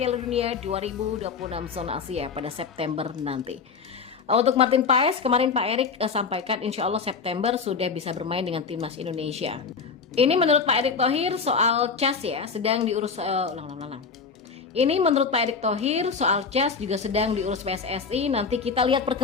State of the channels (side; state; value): right; quieter; 5.3 dB